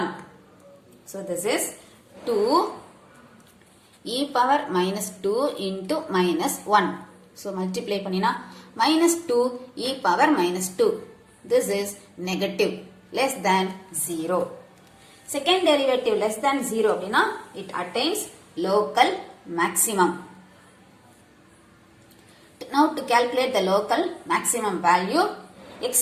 So this is 2 e power minus 2 into minus 1. So multiply பண்ணினா minus 2 e power minus 2. This is negative, less than 0. Second derivative less than 0 அப்படினா it attains local maximum. Now to calculate the local maximum value, x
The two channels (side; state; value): both; identical; correlation 1.00